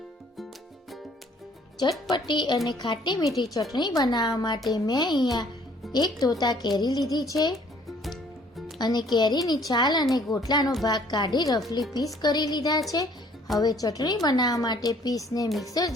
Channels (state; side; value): normal; both; correlation 0.59